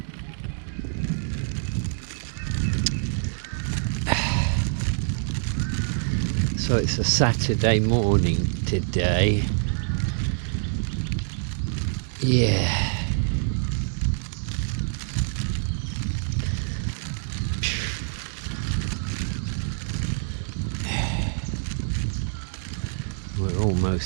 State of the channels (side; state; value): left; silent; digital silence